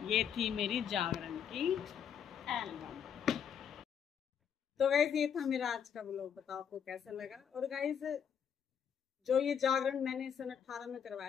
ये थी मेरी जागरण की एल्बम। तो गाइस ये था मेरा आज का व्लॉग, बताओ आपको कैसा लगा। और गाइस जो ये जागरण मैंने सन 18 में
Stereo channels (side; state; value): right; quieter; 8.0 dB